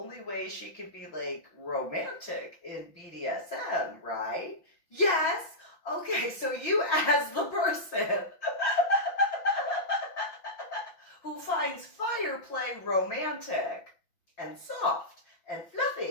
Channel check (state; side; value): late; right; 5.7 ms